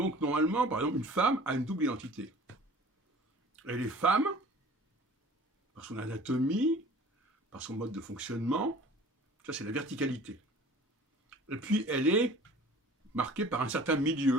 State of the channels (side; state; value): both; normal; correlation 0.46